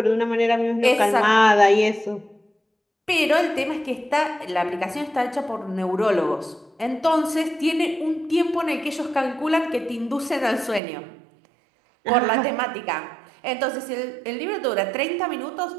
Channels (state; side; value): drops out; left; at 10.8 s